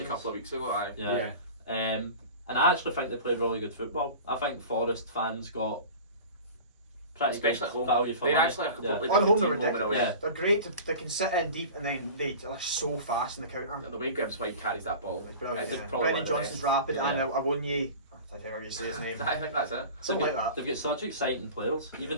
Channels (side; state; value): both; inverted; correlation -0.37